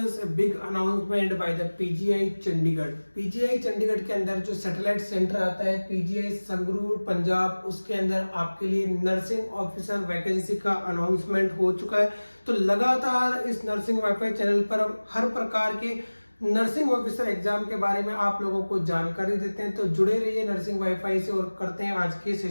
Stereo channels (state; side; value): inverted; both; correlation -1.00